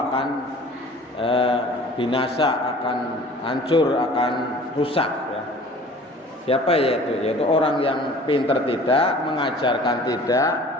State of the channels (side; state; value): both; normal; correlation 0.47